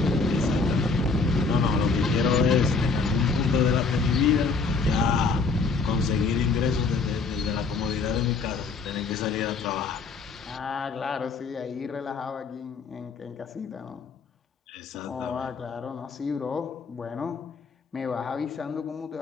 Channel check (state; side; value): quieter; right; 4.5 dB